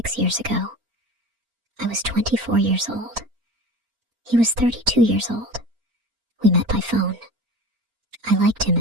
years ago. I was 24 years old. He was 32 years old. We met by phone. I liked him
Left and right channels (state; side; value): late; left; 4.4 ms